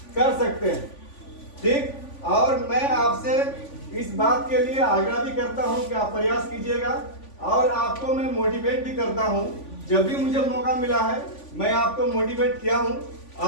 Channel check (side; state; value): right; late; 3.5 ms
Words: कर सकते हैं। ठीक, और मैं आपसे इस बात के लिए आग्रह भी करता हूं कि आप प्रयास कीजिएगा और आपको मैं मोटिवेट भी करता हूं। जब भी मुझे मौका मिला है मैं आपको मोटिवेट किया हूं